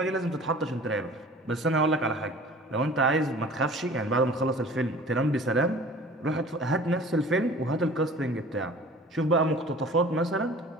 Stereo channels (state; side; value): normal; both; correlation 0.45